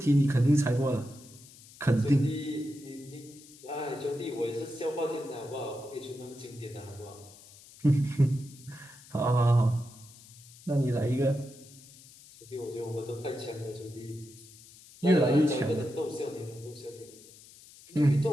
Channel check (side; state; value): left; noise; hiss, 21 dB below the sound